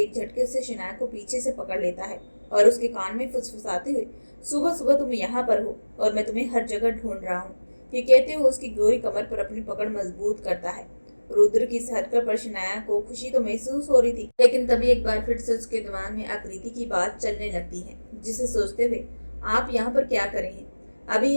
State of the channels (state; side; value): inverted; both; correlation -1.00